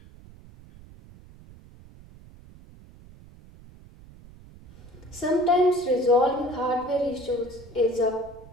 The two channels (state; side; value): noise; right; rumble, 21 dB below the sound